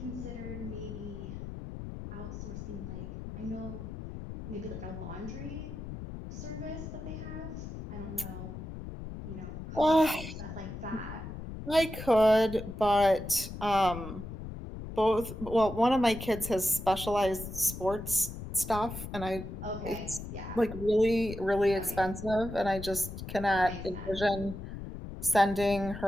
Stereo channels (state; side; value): noise; left; rumble, 9 dB below the sound